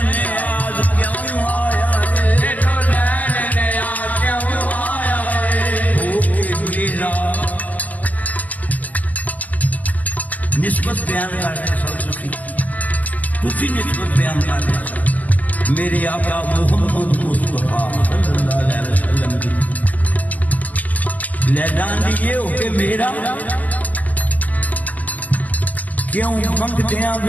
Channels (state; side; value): late; right; 0.074 ms